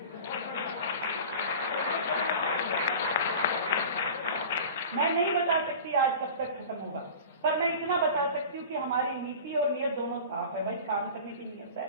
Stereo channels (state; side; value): inverted; both; correlation -0.37